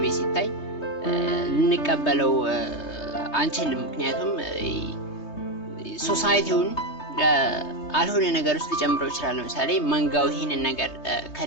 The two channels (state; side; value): late; right; 3.2 ms